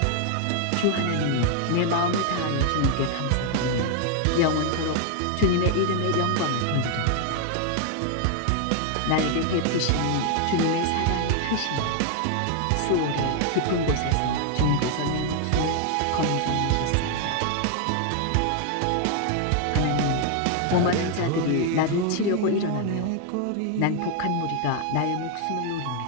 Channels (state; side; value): different; both; correlation 0.00